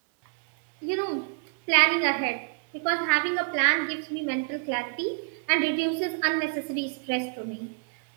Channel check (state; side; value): quieter; left; 37.9 dB